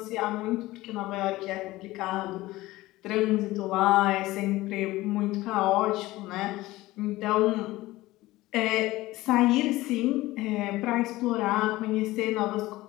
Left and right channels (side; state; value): right; quieter; 18.1 dB